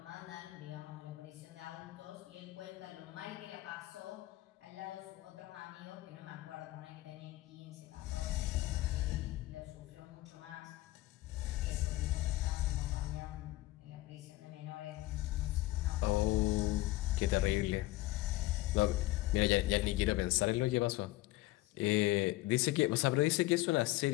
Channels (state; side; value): quieter; right; 18.0 dB